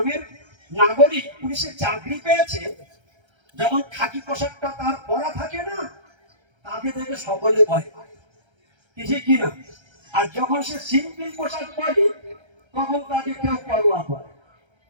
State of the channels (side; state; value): left; late; 1.3 ms